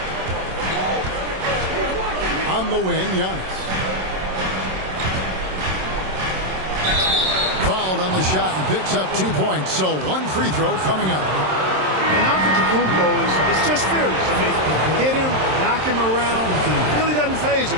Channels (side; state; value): left; late; 27 ms